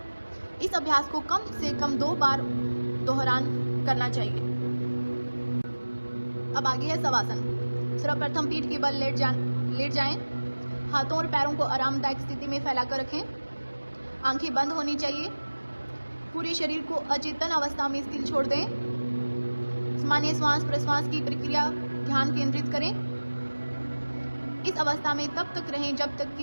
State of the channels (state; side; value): inverted; both; correlation -1.00